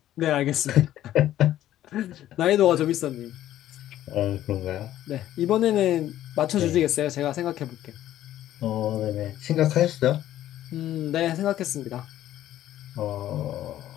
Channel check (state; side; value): quieter; right; 12.9 dB